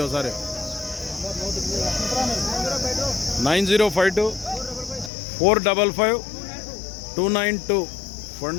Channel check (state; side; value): drops out; right; at 5.1 s